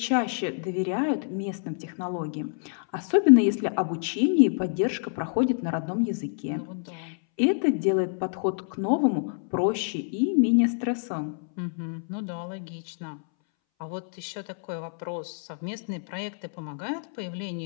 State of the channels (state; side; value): silent; right; 60 dB below the other